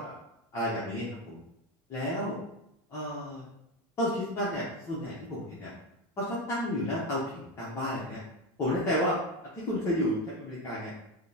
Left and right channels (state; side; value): normal; both; correlation 0.16